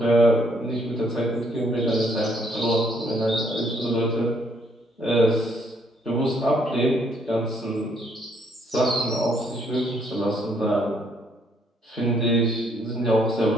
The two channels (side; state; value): both; normal; correlation 0.68